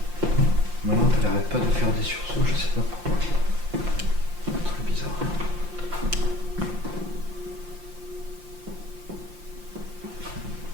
Ma lampe elle arrête pas de faire des sursauts, je sais pas pourquoi. Très bizarre.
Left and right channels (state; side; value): late; left; 5.7 ms